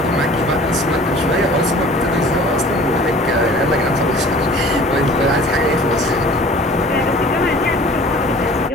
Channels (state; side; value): normal; both; correlation 0.47